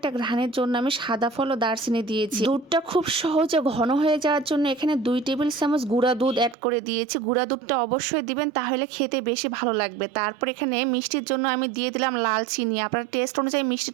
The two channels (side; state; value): left; drops out; at 6.6 s